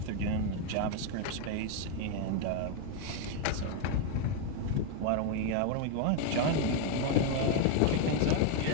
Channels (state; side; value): different; both; correlation 0.01